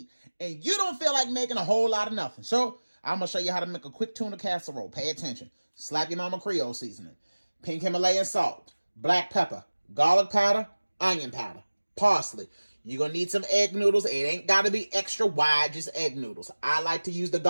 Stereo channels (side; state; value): both; inverted; correlation -1.00